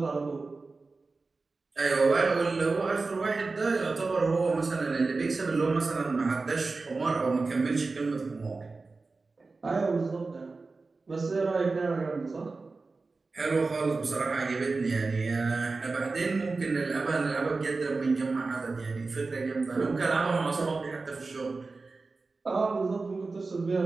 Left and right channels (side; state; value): left; quieter; 3.9 dB